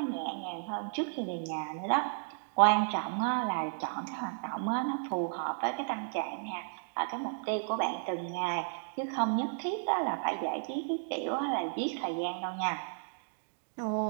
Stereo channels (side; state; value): left; silent; digital silence